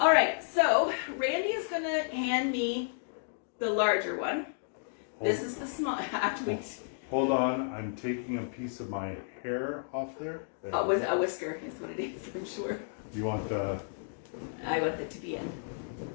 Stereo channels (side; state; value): right; silent; digital silence